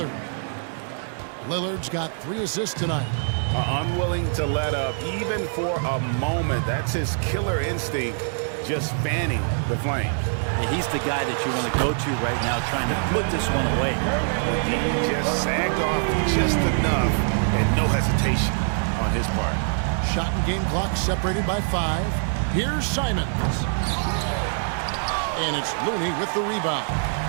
Lillard's got 3 assists tonight. Unwilling to let up even for a moment. That's his killer instinct, just fanning the flame. And he's the guy that you want to go to right now, trying to put this one away. He just sagged off just enough, and no hesitation on his part. Shot and game clock separated by 5. Here's Simons. And it's Looney with the rebound.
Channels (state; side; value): silent; left; 60 dB below the other